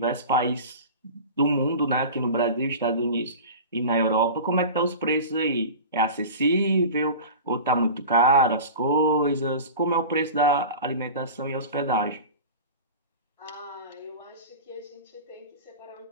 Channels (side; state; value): both; inverted; correlation -0.34